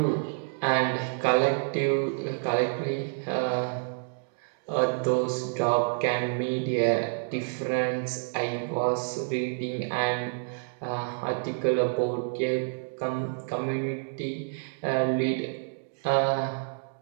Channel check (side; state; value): left; silent; digital silence